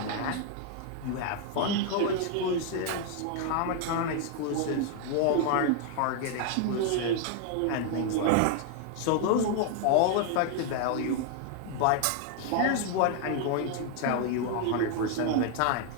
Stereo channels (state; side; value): different; both; correlation 0.00